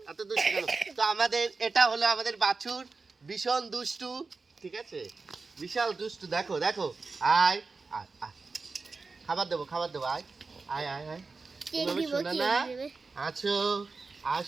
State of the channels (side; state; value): left; quieter; 4.2 dB